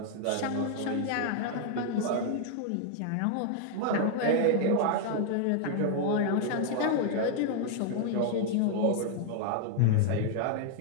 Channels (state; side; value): different; both; correlation 0.00